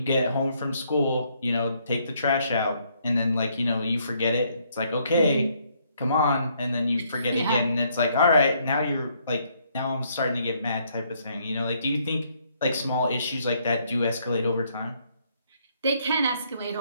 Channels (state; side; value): inverted; both; correlation -0.70